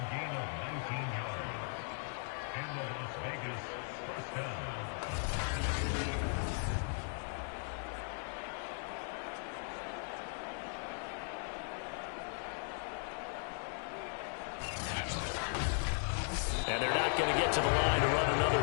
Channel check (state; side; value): silent; right; 53 dB below the other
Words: yards. And the Las Vegas first down. And they're not going to get to the line to run another